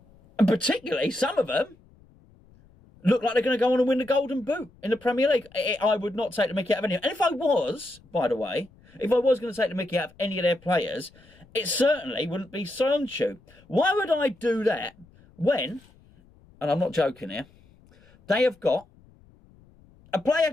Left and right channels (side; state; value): left; noise; rumble, 28 dB below the sound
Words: And particularly, some of them look like they're going to go on and win the Golden Boot in the Premier League. I would not take the mickey out of any. And if I was, by the way, if I was going to take the mickey out of any of their players, it certainly wouldn't be Soyuncu. Why would I do that when, and I'm not joking here, they have got a